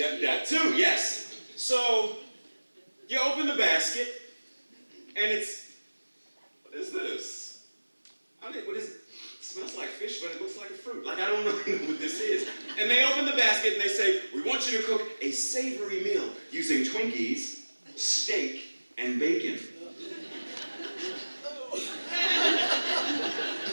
too, yes. So, you open the basket, and what is this? What is it? It smells like fish, but it looks like a fruit. Like, I don't know what this is. And they open the basket and they say, we want you to cook a savory meal using Twinkies, steak, and bacon.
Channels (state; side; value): inverted; both; correlation -1.00